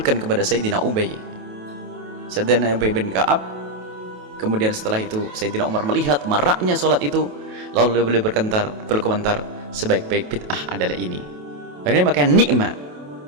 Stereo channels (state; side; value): late; left; 28 ms